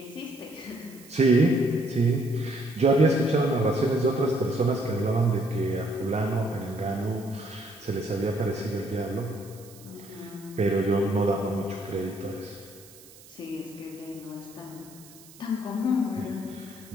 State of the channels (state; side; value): noise; right; hiss, 22 dB below the sound